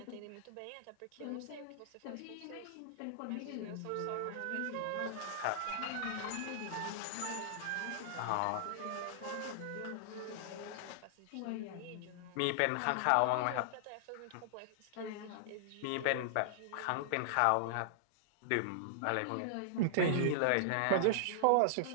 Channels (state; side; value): different; both; correlation -0.01